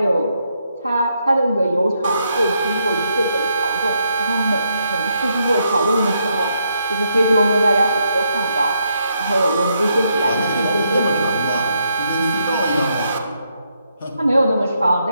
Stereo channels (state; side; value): inverted; both; correlation -0.78